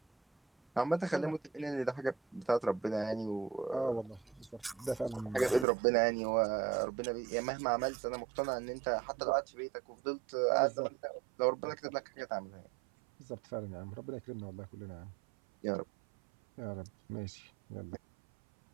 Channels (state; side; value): drops out; left; at 5.7 s